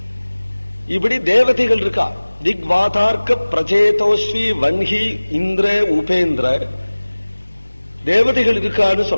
இப்படி தேவதைகள் இருக்கா. திக்வாதார்க்க பிரச்சேதோஸ்வி வன்ஹி இந்திர உபேந்திர தேவதைகள் இருக்கான்னு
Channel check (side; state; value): both; inverted; correlation -1.00